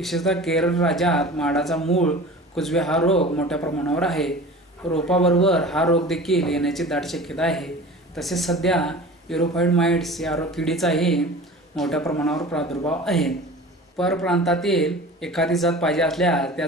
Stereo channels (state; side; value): normal; both; correlation 0.38